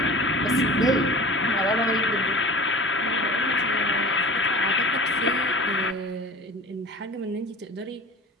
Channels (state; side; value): normal; both; correlation 0.38